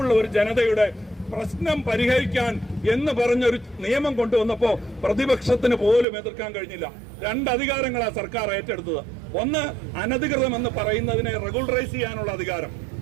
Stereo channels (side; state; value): left; drops out; at 6.1 s